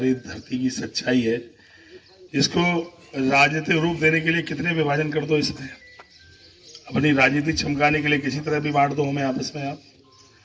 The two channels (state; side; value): identical; both; correlation 1.00